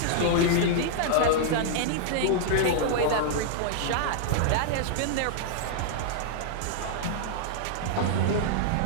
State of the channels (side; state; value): both; different; correlation -0.01